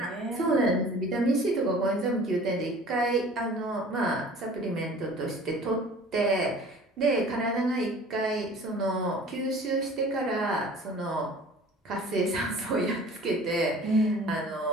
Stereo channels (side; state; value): both; normal; correlation 0.46